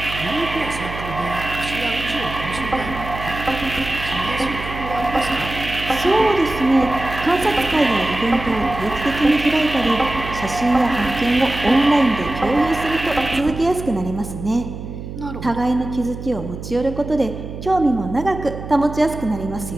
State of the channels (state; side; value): noise; right; hum, 9 dB below the sound